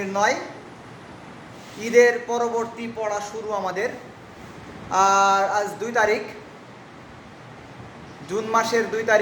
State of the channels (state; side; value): identical; both; correlation 1.00